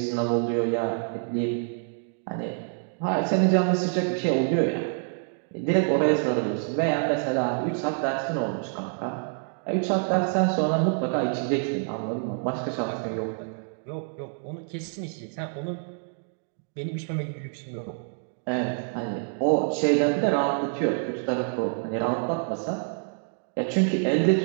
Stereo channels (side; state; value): left; silent; 60 dB below the other